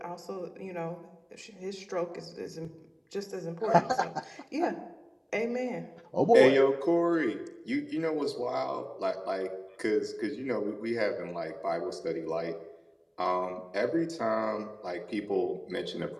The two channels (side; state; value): both; identical; correlation 1.00